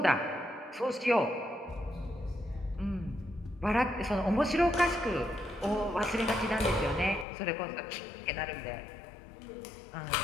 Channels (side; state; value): right; drops out; at 7.2 s